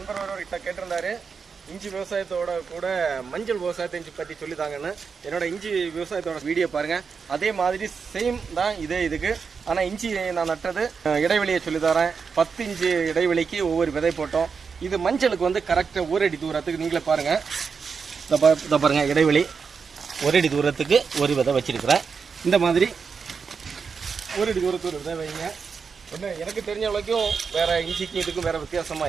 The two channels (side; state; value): left; quieter; 5.6 dB